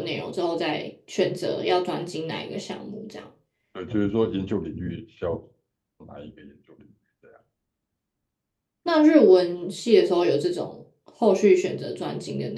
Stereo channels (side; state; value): both; identical; correlation 1.00